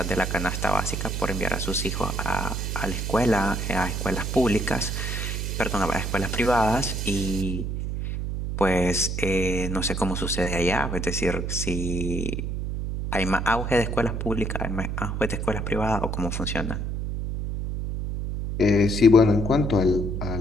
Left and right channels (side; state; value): right; noise; hum, 3 dB below the sound